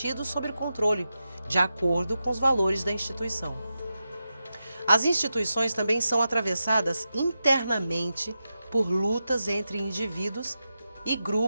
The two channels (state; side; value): inverted; both; correlation -0.90